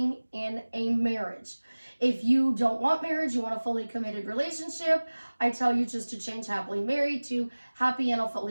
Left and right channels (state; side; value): inverted; both; correlation -1.00